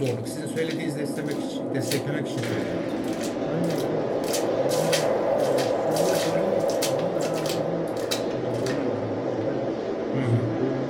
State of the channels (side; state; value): both; identical; correlation 1.00